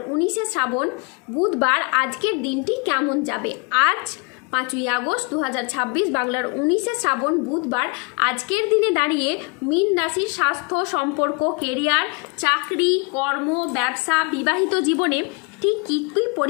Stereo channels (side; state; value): right; quieter; 29.7 dB